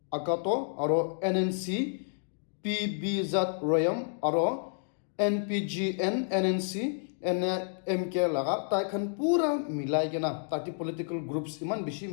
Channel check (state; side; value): silent; right; digital silence